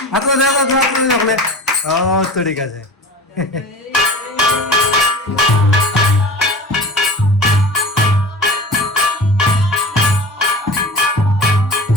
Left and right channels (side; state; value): both; normal; correlation 0.35